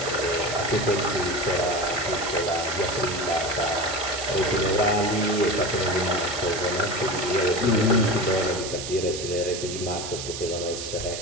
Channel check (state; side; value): noise; right; hiss, 7 dB below the sound